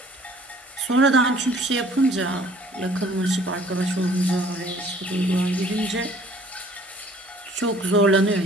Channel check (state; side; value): normal; both; correlation 0.55